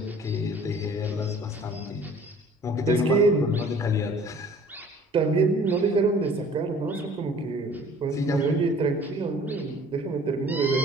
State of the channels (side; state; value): both; normal; correlation 0.51